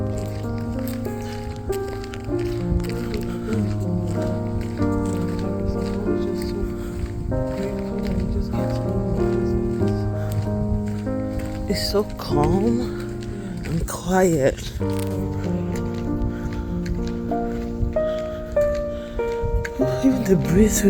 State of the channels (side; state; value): both; identical; correlation 1.00